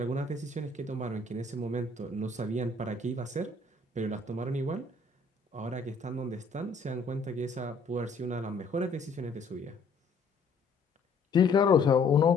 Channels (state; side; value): quieter; right; 3.7 dB